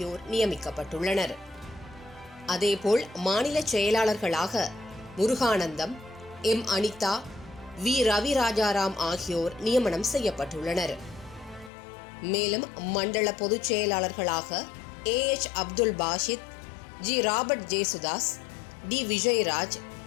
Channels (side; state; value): right; drops out; at 11.7 s